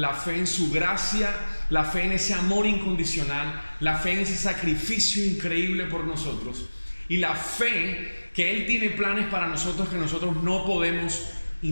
fe en su gracia, la fe en ese amor incondicional, la fe en ese sacrificio increíble por nosotros, y la fe que Él tiene planes para nosotros que nosotros no podemos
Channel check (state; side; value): inverted; both; correlation -1.00